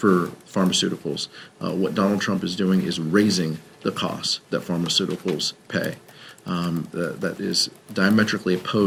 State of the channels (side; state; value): both; identical; correlation 1.00